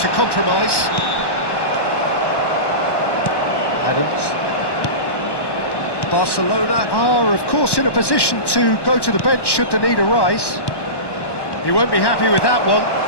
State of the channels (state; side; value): late; right; 1.1 ms